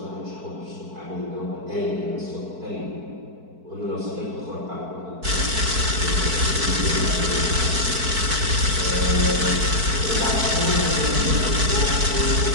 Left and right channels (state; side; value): late; left; 4.5 ms